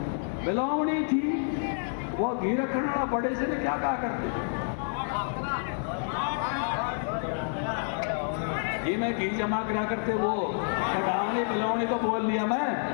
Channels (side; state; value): right; silent; digital silence